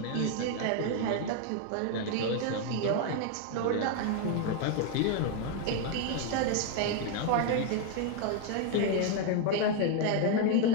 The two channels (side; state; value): both; different; correlation 0.01